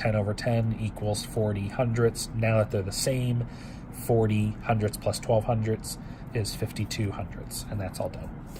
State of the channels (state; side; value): identical; both; correlation 1.00